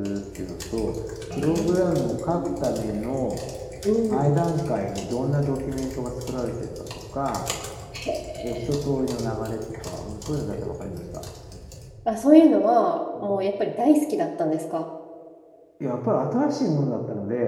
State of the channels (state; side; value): identical; both; correlation 1.00